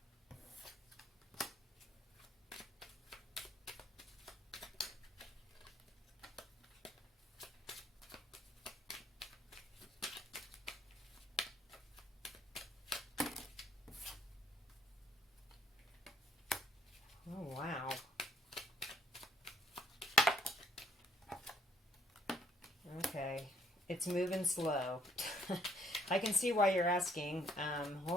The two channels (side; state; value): both; normal; correlation 0.66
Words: Oh, wow. Okay. It's moving slow. I can see why you're asking.